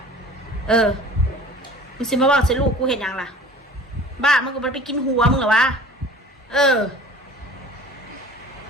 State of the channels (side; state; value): both; normal; correlation 0.44